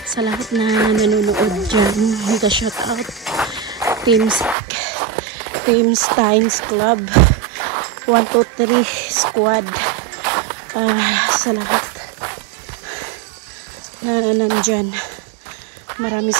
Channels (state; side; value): drops out; left; at 4.5 s